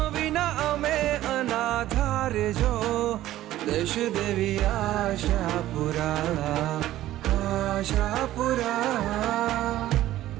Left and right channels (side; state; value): left; quieter; 14.3 dB